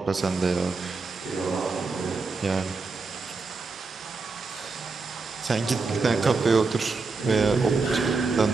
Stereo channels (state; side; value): quieter; left; 4.2 dB